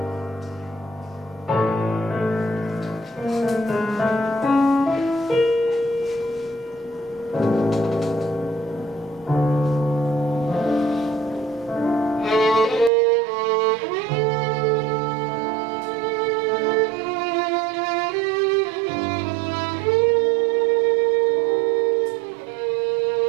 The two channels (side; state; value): left; drops out; at 12.9 s